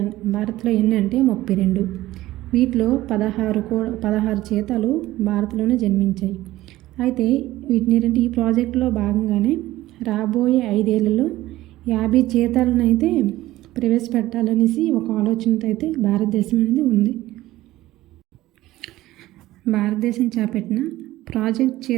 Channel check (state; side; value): quieter; left; 16.3 dB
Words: భారత్లో ఎన్ని అంటే 32. వీటిలో 16 చీతాలు భారత్లోనే జన్మించాయి. అయితే వీటిని ఏంటంటే ఈ ప్రాజెక్టులో భాగంగానే రాబోయే 5 ఏళ్లలో 50 చీతాలను అయితే ప్రవేశపెట్టాలనేసి ఒక ఆలోచనతో అయితే భారతదేశం అనేది ఉంది. భారతదేశం చేపట్టిన ప్రాజెక్ట్